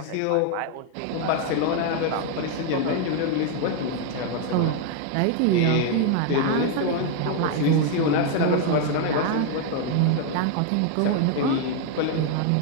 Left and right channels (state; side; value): different; both; correlation 0.00